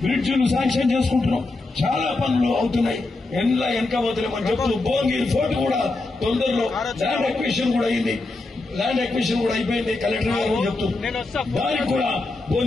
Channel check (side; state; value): right; quieter; 3.2 dB